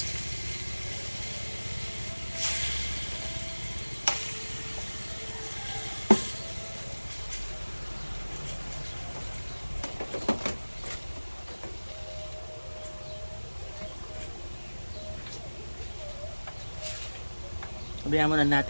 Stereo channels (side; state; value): both; inverted; correlation -1.00